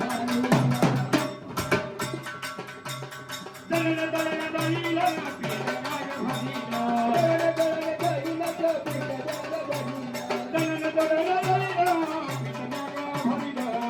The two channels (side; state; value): both; identical; correlation 1.00